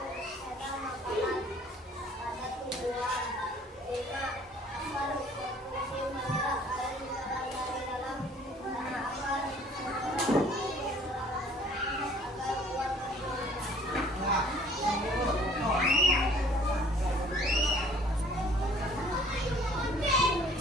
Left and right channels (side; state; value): both; normal; correlation 0.55